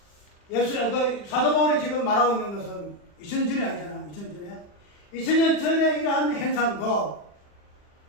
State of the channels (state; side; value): late; right; 40 ms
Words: 사도 바울이 지금 말하고 있는 것은 2000년 전이 아니잖아. 2000년 전에 이러한 행상도